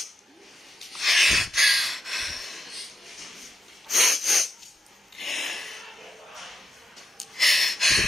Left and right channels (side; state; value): both; normal; correlation 0.85